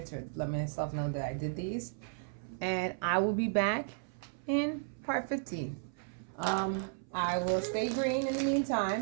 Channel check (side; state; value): left; silent; 55 dB below the other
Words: to let myself know that I did these, and I will be back in part 15. I will stay green in the